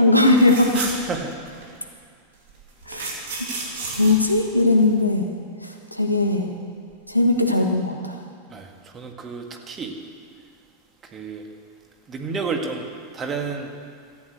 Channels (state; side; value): inverted; both; correlation -0.48